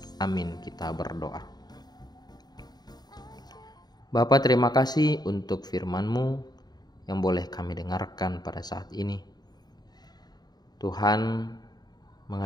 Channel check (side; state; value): right; late; 0.20 ms